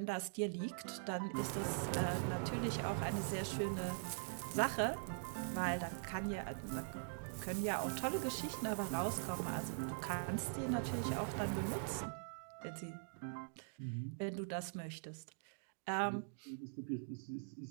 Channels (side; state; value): left; silent; digital silence